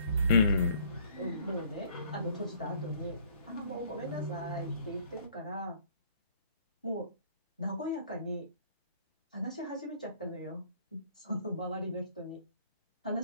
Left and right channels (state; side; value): inverted; both; correlation -0.59